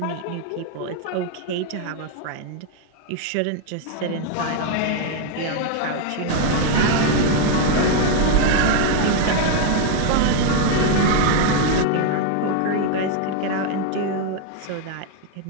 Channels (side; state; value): both; different; correlation 0.00